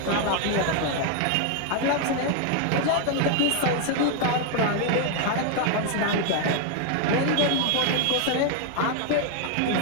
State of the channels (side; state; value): both; different; correlation 0.00